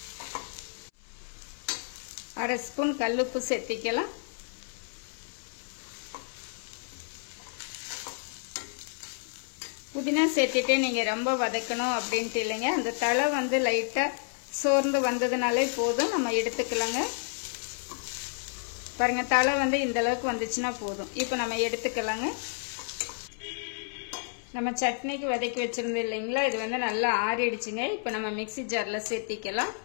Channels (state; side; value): silent; right; 58 dB below the other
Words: அரை ஸ்பூன் கல்லுப்பு சேர்த்திக்கலாம். புதினா சேர்த்திட்டு நீங்க ரொம்ப வதக்கணும் அப்படின்ட்டு இல்லைங்க. அந்த தலை வந்து லைட்டா சோர்ந்து வந்ததுனாலே போதும், நம்ம எடுத்துக்கலாங்க. பாருங்க தலை வந்து இந்த அளவுக்கு வந்துச்சுன்னா போதும். இப்போ நம்ம எடுத்துக்கலாங்க. நம்ம சட்னிக்கு வதக்கி வச்சிருந்தோம் இல்லைங்களா, இது வந்து நல்லா ஆறிடுச்சுங்க. இப்போ நம்ம மிக்ஸி ஜார்ல சேர்த்திக்கலாம்.